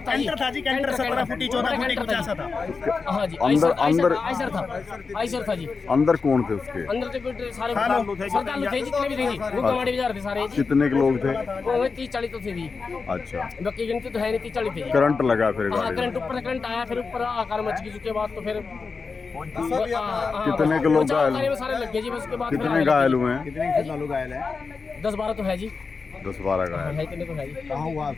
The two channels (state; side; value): quieter; right; 4.7 dB